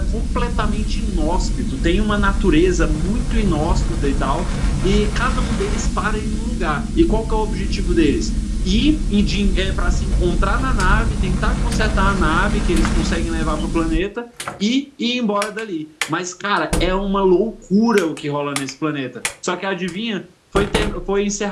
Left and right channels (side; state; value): both; identical; correlation 1.00